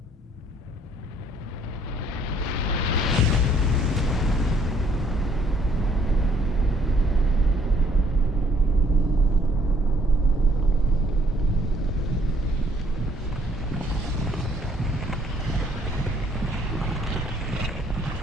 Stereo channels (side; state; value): both; normal; correlation 0.63